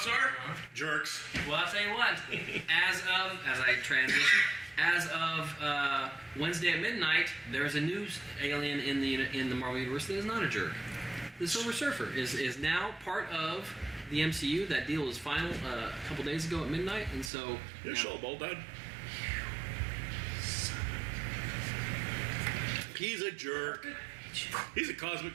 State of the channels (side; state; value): left; drops out; at 17.3 s